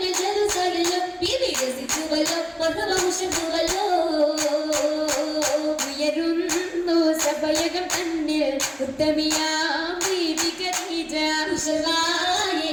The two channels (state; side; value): identical; both; correlation 1.00